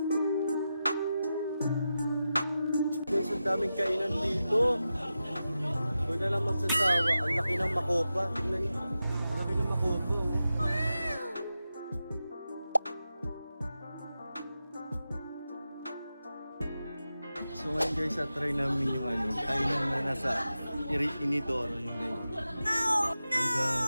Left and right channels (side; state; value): both; inverted; correlation -0.91